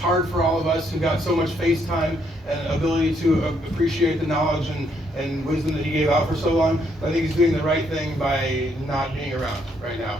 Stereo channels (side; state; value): both; normal; correlation 0.72